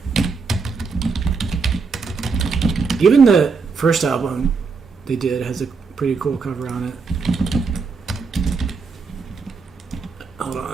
Even the first album they did has a pretty cool cover on it. Hold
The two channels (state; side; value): quieter; left; 4.8 dB